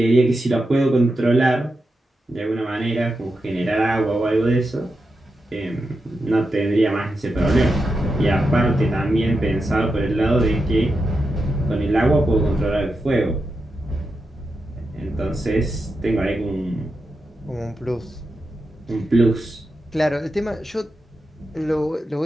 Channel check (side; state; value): both; normal; correlation 0.88